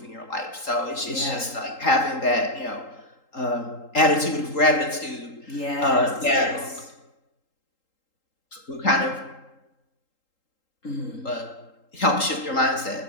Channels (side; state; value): right; late; 3.8 ms